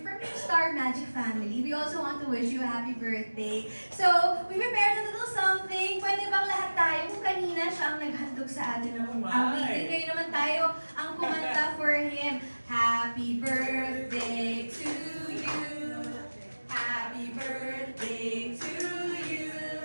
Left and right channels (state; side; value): inverted; both; correlation -1.00